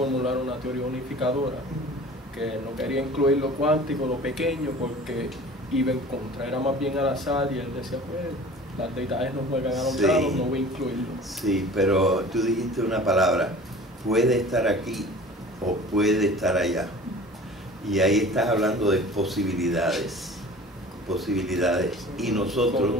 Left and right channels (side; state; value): both; normal; correlation 0.43